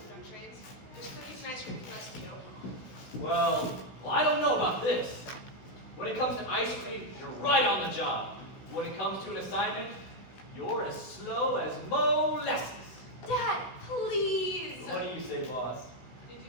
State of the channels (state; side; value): late; right; 16 ms